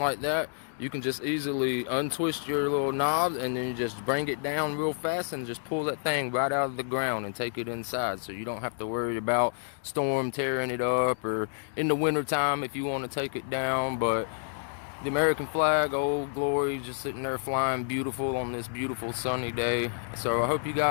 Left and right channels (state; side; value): silent; right; digital silence